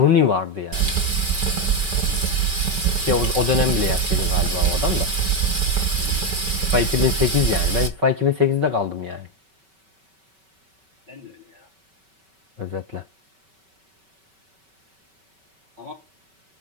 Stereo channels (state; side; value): late; left; 5.2 ms